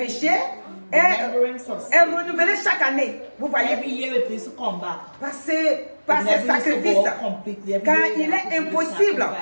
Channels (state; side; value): inverted; both; correlation -1.00